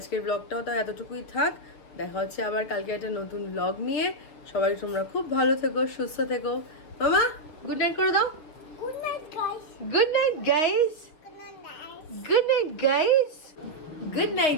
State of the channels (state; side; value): late; right; 6.3 ms